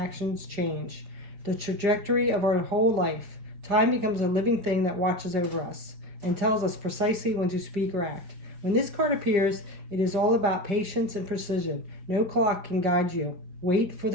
change. The trajectory of our whole life. Time becomes a living thing that watches over us and tells us precisely when to speak or act. When this card appears, it is all about patience and precision. No clock can guide you. Wait for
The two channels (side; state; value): left; late; 5.0 ms